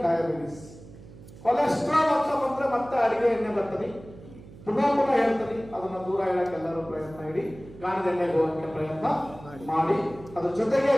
diabetes. Cholesterol ಅಂತ ಬಂದ್ರೆ ಮತ್ತೆ ಅಡಿಗೆ ಎಣ್ಣೆ ಬರ್ತದೆ. ಪುನಃ ಹೇಳ್ತೀನಿ, ಅದನ್ನ ದೂರ ಹೇಳಕ್ಕೆ ಎಲ್ಲರೂ ಪ್ರಯತ್ನ ಇಡಿ. ಗಾಣದ ಎಣ್ಣೆಗೆ ಹೋಗಕ್ಕೆ ಪ್ರಯತ್ನ ಮಾಡಿ. ಅದ್ರ ಜೊತೆಗೆ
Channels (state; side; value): noise; right; hum, 18 dB below the sound